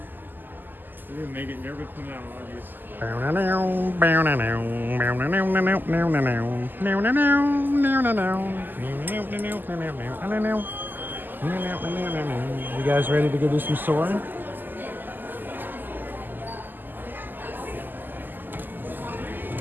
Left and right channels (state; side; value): late; left; 0.089 ms